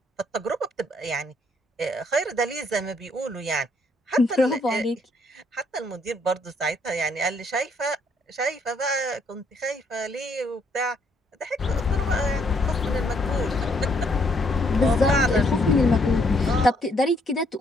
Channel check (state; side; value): normal; both; correlation 0.69